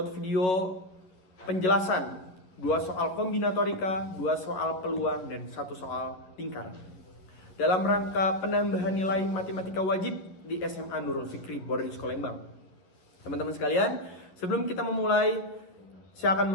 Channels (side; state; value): right; late; 11 ms